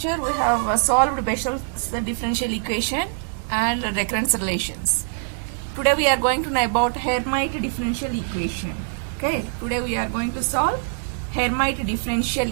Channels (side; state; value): left; silent; digital silence